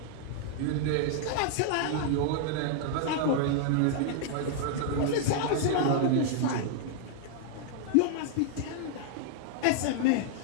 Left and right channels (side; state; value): both; different; correlation -0.01